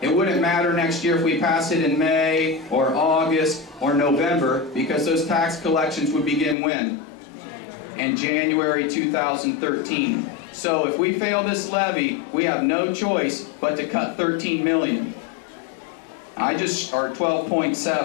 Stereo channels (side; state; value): right; drops out; at 6.6 s